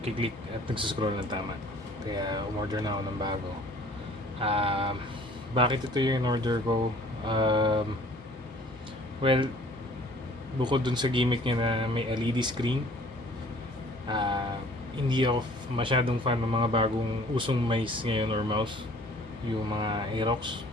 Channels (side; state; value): both; normal; correlation 0.53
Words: at nagsascroll ng tama. Kaya umorder na ako ng bago. Bakit ito yung order ko? Well, bukod dun sa gimmick niya na may LED screen, hindi ako masyadong fan ng mga bagong usong mice ngayon or mouse, yung mga Aerox.